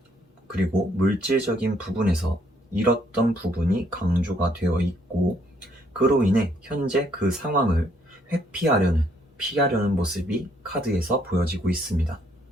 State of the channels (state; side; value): normal; both; correlation 0.68